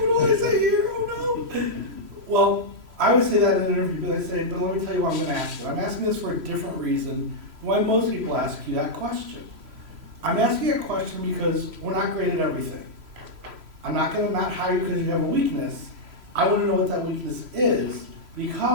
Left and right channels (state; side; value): late; left; 3.0 ms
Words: do I say here? Oh no. Well, I always say that in an interview, but I say, but let me tell you what I'm going to ask you. I'm asking this for a different reason than why most people ask you that question. I'm asking a question because we're not great at everything. I'm not going to not hire you because you have a weakness. I want to know what that weakness is,